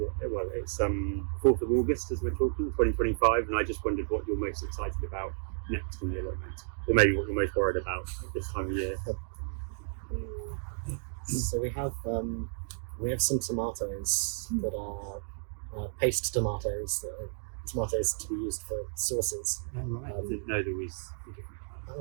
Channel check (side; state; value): left; silent; digital silence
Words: 4th of August as we're talking, 2025, and I just wondered what you're most excited about next in the allotment, or maybe what you're most worried about at this time of year. So we have some tomatoes that are paste tomatoes, that are tomatoes to be used for sauces. I didn't know there was.